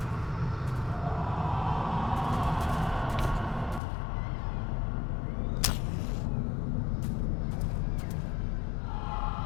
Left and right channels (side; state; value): right; drops out; at 3.8 s